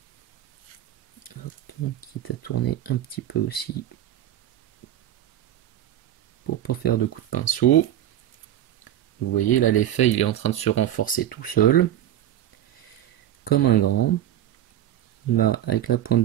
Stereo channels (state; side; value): quieter; left; 11.8 dB